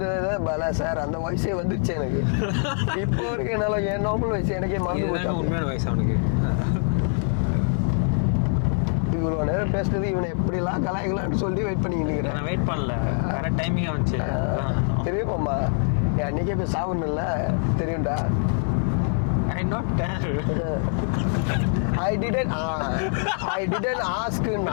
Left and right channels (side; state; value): right; silent; 62 dB below the other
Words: பல சார் அந்த வயசே வந்துருச்சு எனக்கு. இப்போ வரைக்கும் என்னால என் நார்மல் வயசு எனக்கே மறந்து போச்சு. உண்மையான வயசு அவனுக்கு. இவ்வளவு நேரம் பேசுறது இவனை எப்படிலாம் கலாய்க்கலாம்னு சொல்லி வெயிட் பண்ணிக்கிட்டு இருக்கிறேன். நான் வெயிட் பண்ணல, கரெக்ட் டைமிங்கா வந்துச்சு. தெரியுமாம்மா, அன்னைக்கே போய் சாப்பிடணும்ல, தெரியும்டா. I not tell. I didn't ask.